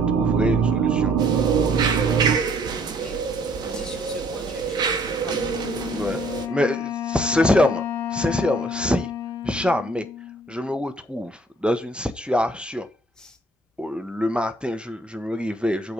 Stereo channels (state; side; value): normal; both; correlation 0.60